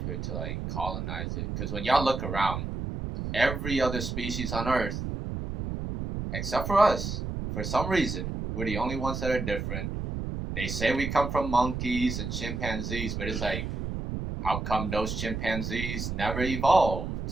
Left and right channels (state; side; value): noise; right; rumble, 4 dB below the sound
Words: here to like colonize it. Because when y'all look around, every other species on Earth, except for us, for some reason, we're the only ones that are different. They say we come from monkeys and chimpanzees, but it's like, how come those chimpanzees never evolved